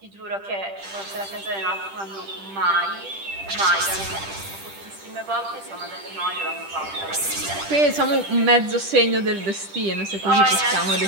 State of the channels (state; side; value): late; left; 10 ms